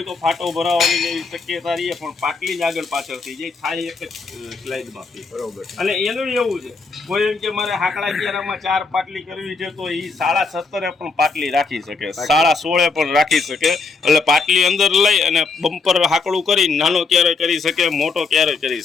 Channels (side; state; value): right; quieter; 4.4 dB